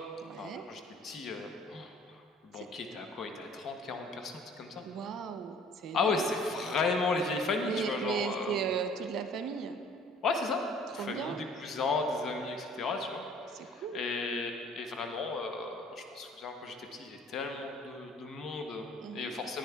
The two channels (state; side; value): normal; both; correlation 0.53